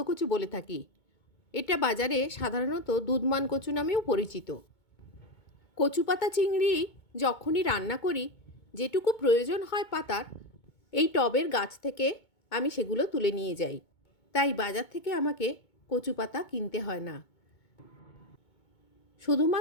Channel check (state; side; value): late; right; 2.2 ms